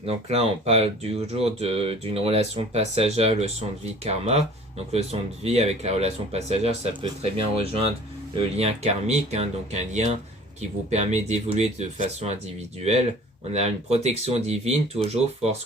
Donc là, on parle toujours d'une relation passagère, leçon de vie karma. Donc leçon de vie avec la relation passagère, ça peut très bien rejoindre le lien karmique, hein, donc un lien qui vous permet d'évoluer de façon individuelle. On a une protection divine, toujours force,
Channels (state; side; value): normal; both; correlation 0.47